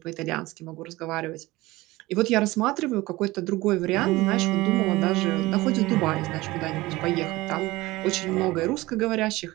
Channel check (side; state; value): left; quieter; 19.6 dB